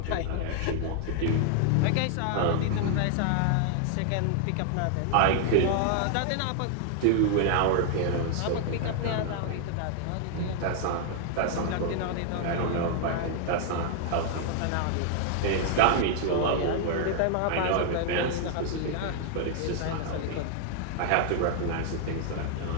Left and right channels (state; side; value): different; both; correlation 0.00